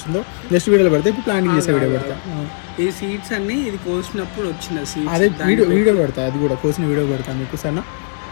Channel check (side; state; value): right; silent; 63 dB below the other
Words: నెక్స్ట్ వీడియోలో పెడతా. ఇప్పుడు ప్లాంటింగ్ చేసే వీడియో పెడతా. ఈ సీడ్స్ అన్ని ఇది కోసినప్పుడు వచ్చిన సీడ్స్, అదే వీడియో పెడతా, అది కూడా కోసిన వీడియో పెడతా మీకు. సరేనా?